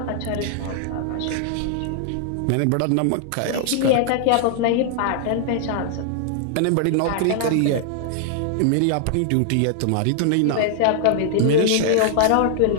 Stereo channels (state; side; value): different; both; correlation 0.00